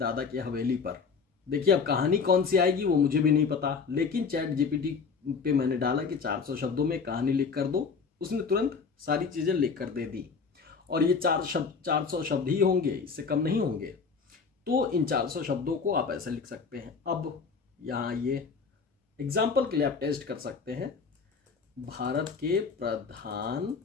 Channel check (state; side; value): quieter; right; 5.3 dB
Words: की हवेली पर। देखिए, अब कहानी कौन सी आएगी वो मुझे भी नहीं पता, लेकिन चैट जीपीटी पे मैंने डाला कि 400 शब्दों में कहानी लिख कर दो, उसने तुरंत सारी चीजें लिख कर दे दी। और ये 400 शब्द ही होंगे, इससे कम नहीं होंगे। तो इन 400 शब्दों को आप ऐसे लिख सकते हैं। अब यहाँ ये एग्जाम्पल के लिए आप टेस्ट कर सकते हैं, भारत के